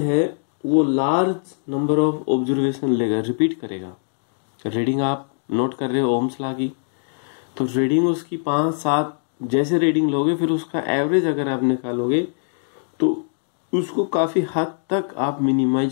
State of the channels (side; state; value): right; silent; digital silence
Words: वो लार्ज नंबर ऑफ ऑब्जर्वेशन लेगा, रिपीट करेगा। रीडिंग आप नोट कर रहे हो ओम्स लॉ की, तो रीडिंग उसकी 5-7 जैसे रीडिंग लोगे, फिर उसका एवरेज अगर आप निकालोगे तो उसको काफी हद तक आप